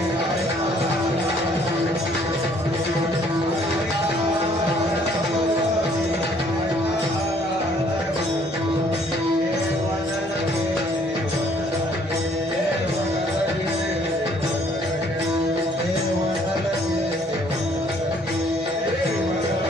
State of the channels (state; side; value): normal; both; correlation 0.62